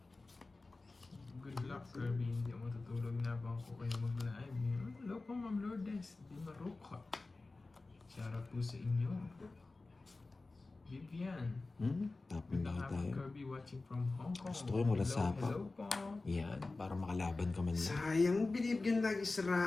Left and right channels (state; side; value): quieter; right; 3.4 dB